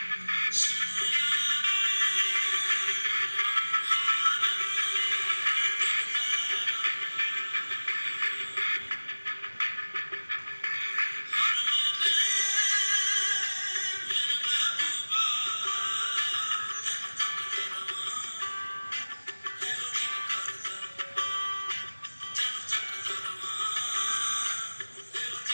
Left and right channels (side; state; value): both; inverted; correlation -1.00